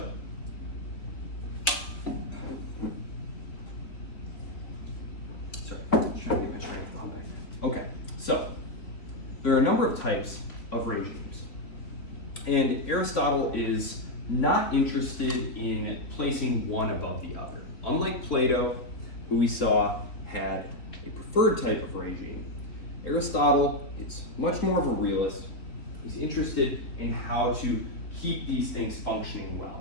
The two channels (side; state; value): right; late; 3.6 ms